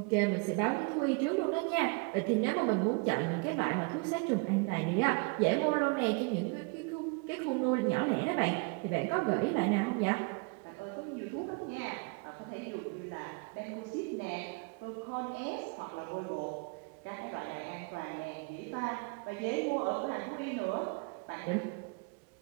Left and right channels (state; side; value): quieter; left; 31.9 dB